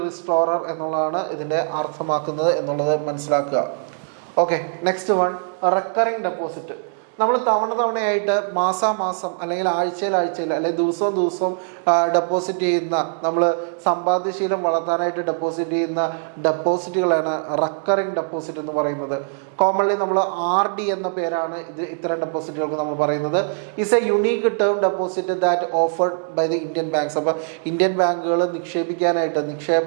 റിസ്റ്റോറർ എന്നുള്ളതാണ് ഇതിൻ്റെ അർത്ഥമാക്കുന്നത് എന്നുള്ളത് മനസ്സിലാക്കുക. Okay, next one recurring deposit. നമ്മൾ തവണയായിട്ട് മാസാമാസം അല്ലെങ്കിൽ ആഴ്ചയിൽ അല്ലെങ്കിൽ ദിവസവും ഡെപ്പോസിറ്റ് ചെയ്യുന്ന, നമ്മൾ സമ്പാദ്യശീലം വളർത്താനായിട്ട് ഡെപ്പോസിറ്റ് ചെയ്യുന്ന ഡെപ്പോസിറ്റുകളാണ് റെക്കറിങ് ഡെപ്പോസിറ്റ് എന്ന് പറയുന്നത്. കോമൺലി നമ്മൾ RD എന്ന പേരാണ് ഇത്തരം ഡെപ്പോസിറ്റുകൾക്ക് നമ്മൾ പറയുന്നത്. Is a unique term deposit that offered by the Indian banks. അപ്പോൾ ഇന്ത്യൻ ബാങ്കുകൾ നിക്ഷേപിക്കാനായിട്ട്,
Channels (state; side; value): silent; left; digital silence